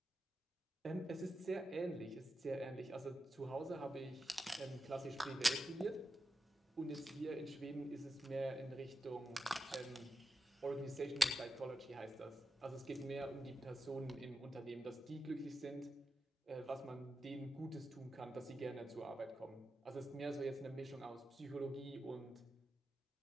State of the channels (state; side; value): normal; both; correlation 0.90